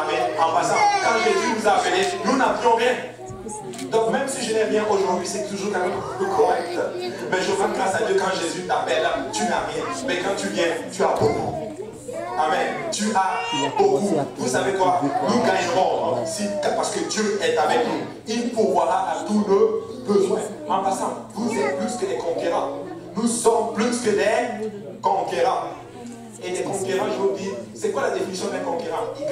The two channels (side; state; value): both; identical; correlation 1.00